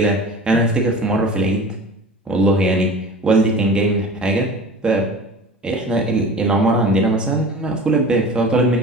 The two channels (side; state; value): both; normal; correlation 0.38